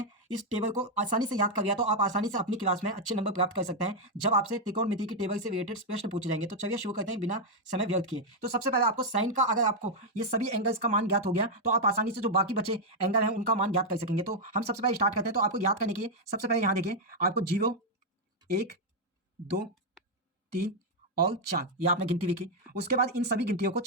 इस टेबल को आसानी से याद कर लिया तो आप आसानी से अपनी क्लास में अच्छे नंबर प्राप्त कर सकते हैं, जब आपसे त्रिकोणमिति की टेबल से रिलेटेड प्रश्न पूछे जाएंगे। तो चलिए शुरू करते हैं बिना समय व्यर्थ किए। तो सबसे पहले आपको साइन का, अगर आपको ये सभी एंगल्स का मान ज्ञात हो गया तो आप आसानी से जो बाकी बचे एंगल हैं उनका मान ज्ञात कर सकेंगे। तो हम सबसे पहले स्टार्ट करते हैं। तो आपको याद करने के लिए सबसे पहले यहाँ देखिए, आपको 0, 1, 2, 3 और 4 ये आपने गिनती लिखी। उसके बाद इन सभी गिनतियों को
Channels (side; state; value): both; normal; correlation -0.01